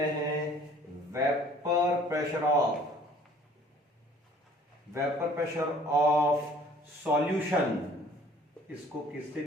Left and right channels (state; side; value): normal; both; correlation 0.54